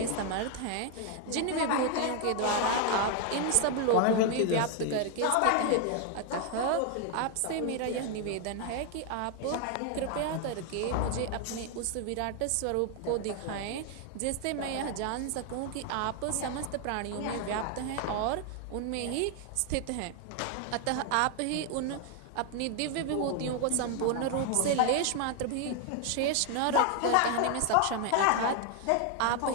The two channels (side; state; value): both; different; correlation 0.00